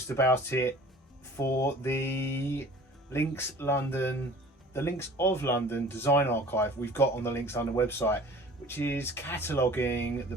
about it for the Links of London design archive we've got on the Links London website, which is cataloguing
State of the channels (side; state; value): both; normal; correlation 0.46